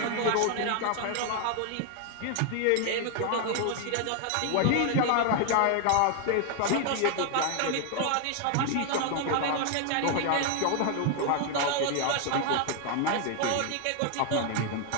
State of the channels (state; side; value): different; both; correlation 0.00